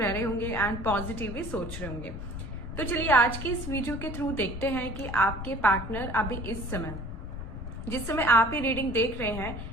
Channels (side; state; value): left; noise; rumble, 8 dB below the sound